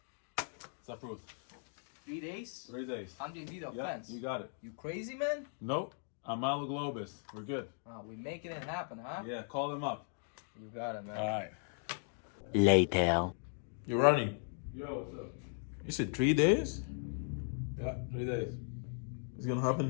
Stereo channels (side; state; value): right; silent; 53 dB below the other